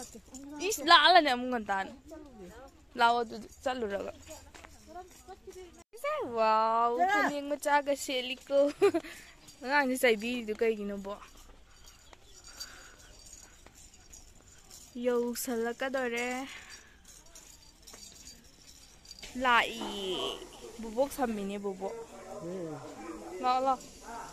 이씨 라알라네 아무건단 라워도 짤루라가 와우 파닝 마차가 셀리코 아니 사이비도 그이기는 뭐 여우살라까더래 라이 부복 삼미니 부복 라라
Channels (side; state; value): both; identical; correlation 1.00